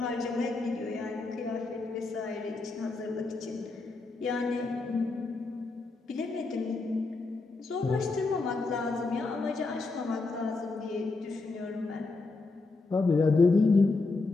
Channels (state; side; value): quieter; right; 3.6 dB